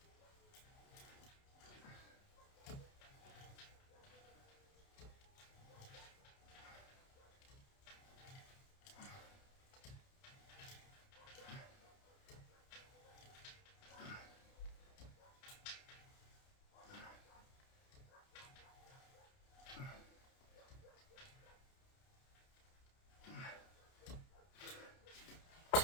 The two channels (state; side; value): late; right; 30 ms